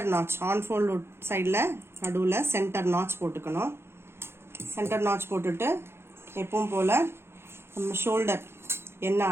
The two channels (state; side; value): late; left; 0.12 ms